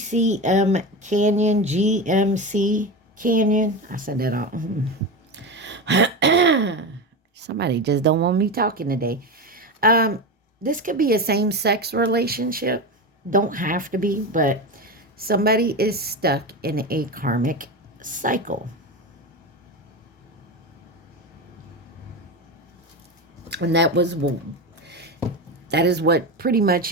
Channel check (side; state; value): both; normal; correlation 0.20